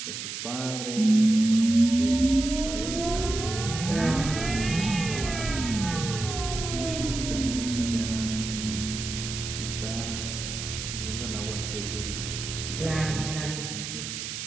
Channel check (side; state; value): right; noise; hiss, 6 dB below the sound